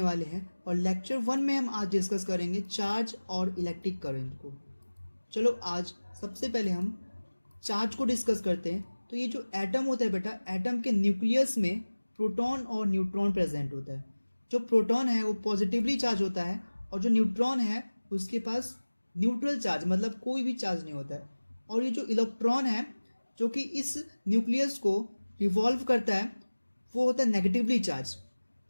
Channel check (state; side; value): inverted; both; correlation -1.00